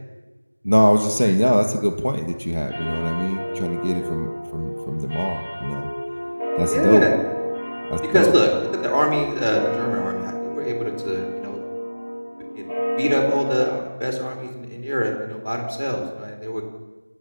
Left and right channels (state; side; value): inverted; both; correlation -1.00